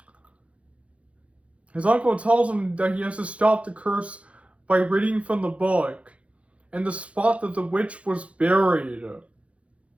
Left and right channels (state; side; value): late; left; 0.063 ms